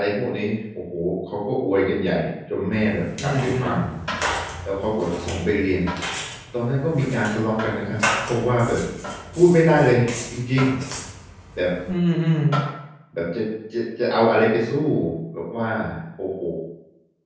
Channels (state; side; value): identical; both; correlation 1.00